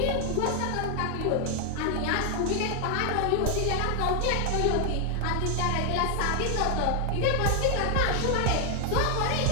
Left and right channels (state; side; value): different; both; correlation 0.00